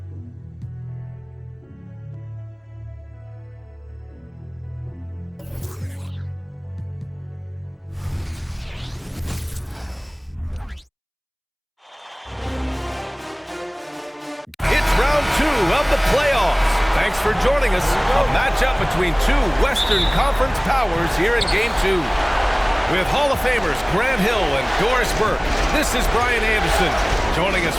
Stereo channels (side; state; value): both; identical; correlation 1.00